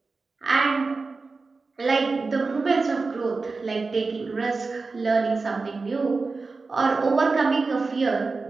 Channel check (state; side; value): quieter; left; 4.0 dB